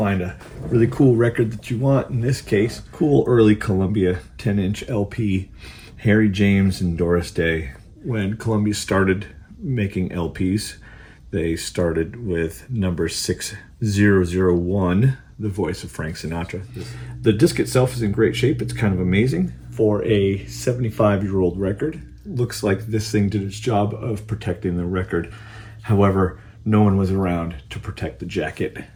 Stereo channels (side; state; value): both; identical; correlation 1.00